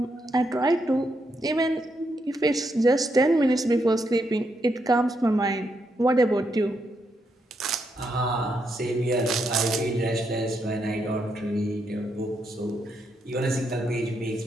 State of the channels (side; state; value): both; normal; correlation 0.80